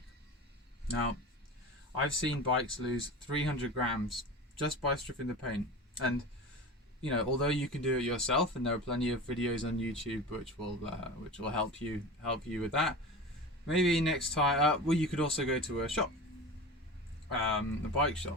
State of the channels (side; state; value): both; normal; correlation 0.30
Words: Now, I've seen bikes lose 300 grams just by stripping the paint. And you know, although you can do it yourself, and there are plenty of videos on YouTube which will help you with that. Maybe next time, well, you could also go to a shop, a bike